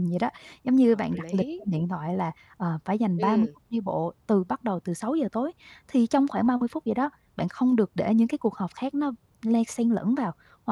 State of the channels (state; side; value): identical; both; correlation 1.00